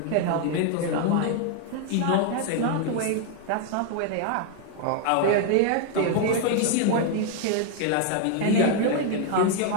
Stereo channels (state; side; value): different; both; correlation 0.00